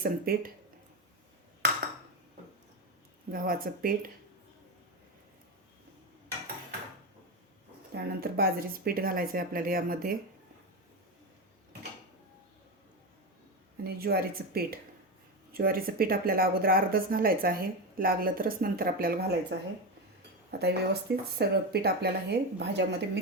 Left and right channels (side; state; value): both; normal; correlation 0.15